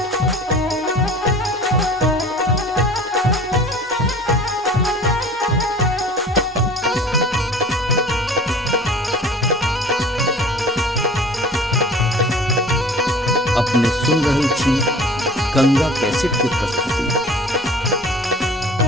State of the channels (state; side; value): normal; both; correlation 0.44